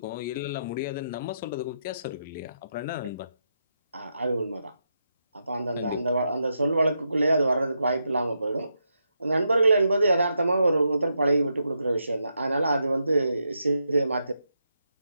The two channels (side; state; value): both; inverted; correlation -0.83